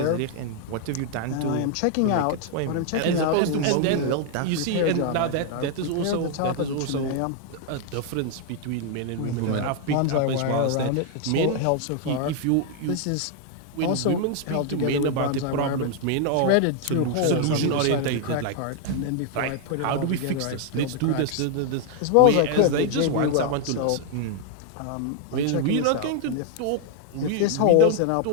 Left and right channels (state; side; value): different; both; correlation 0.00